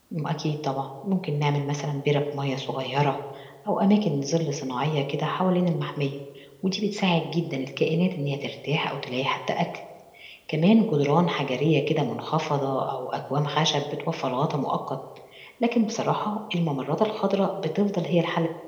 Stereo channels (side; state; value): both; identical; correlation 1.00